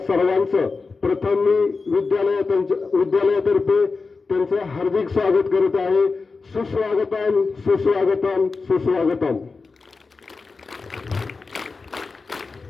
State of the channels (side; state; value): right; quieter; 4.3 dB